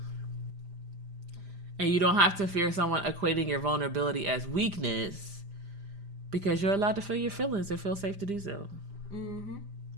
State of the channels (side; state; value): left; late; 5.0 ms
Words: And you don't have to fear someone equating your vulnerability as weakness, because you're allowed to feel your feelings and feel safe to do so. Mm-hmm.